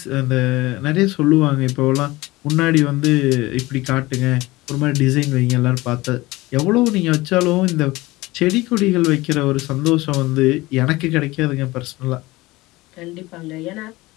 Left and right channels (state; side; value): quieter; right; 20.2 dB